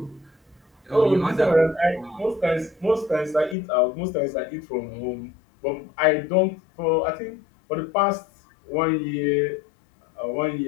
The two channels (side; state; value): right; drops out; at 3.6 s